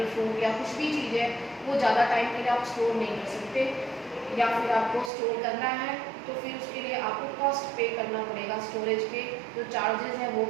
फ्रूट या कुछ भी चीज़ है वो ज़्यादा टाइम के लिए आप स्टोर नहीं कर सकते, या फिर आपको स्टोर करना है तो फिर उसके लिए आपको कॉस्ट पे करना पड़ेगा। स्टोरेज के जो चार्जेस हैं वो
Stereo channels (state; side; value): drops out; left; at 5.1 s